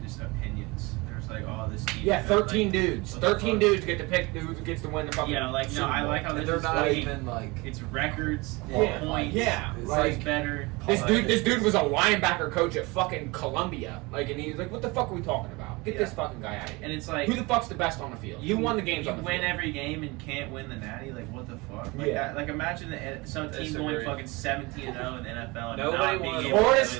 just opinions. There's like, oh, this team. Yeah, 13 dudes. what the 13 fuck? dudes get to pick who gets to win the fucking. Yeah, like no, Super I Bowl. like how this They're is not like, even like. it's records, Yeah, points. yeah, It's like- better. This dude was a linebacker coach at fucking Columbia. Like, and he was like, "What the fuck are we talking about? Get this fucking guy out of here." And it's like Who the fuck's the best on the field? Who won the games You on the win field? every game and can't win the natty. Like what the fuck? Like, Yeah. like imagine some team going Disagree. fucking 17-0 in the NFL. And Nobody not being won. able Florida to-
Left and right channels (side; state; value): left; quieter; 24.7 dB